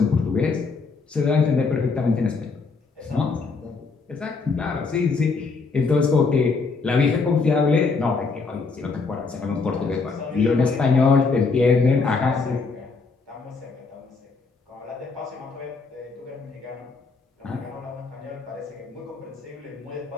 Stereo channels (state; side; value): quieter; right; 4.4 dB